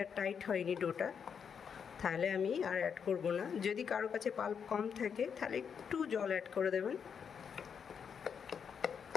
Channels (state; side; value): quieter; right; 7.0 dB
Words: টাইট হয়নি ডোটা, তাহলে আমি আর অ্যাড করব না। যদি কারো কাছে পাল্প কম থাকে তাহলে একটু জল অ্যাড করে দেবেন।